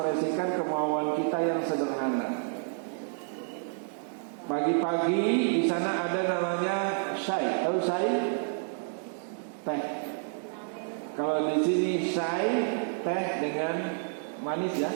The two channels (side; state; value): left; silent; digital silence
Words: kemauan kita yang sederhana. Pagi-pagi di sana ada namanya syai. Tahu syai? Teh. Kalau di sini syai teh dengan manis ya,